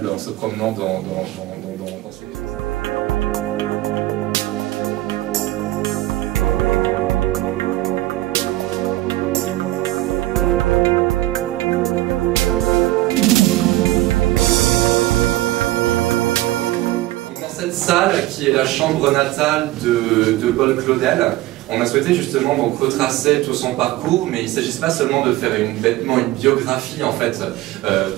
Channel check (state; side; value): quieter; left; 17.1 dB